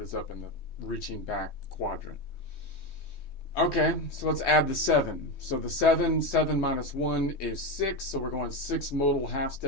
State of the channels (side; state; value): right; late; 3.2 ms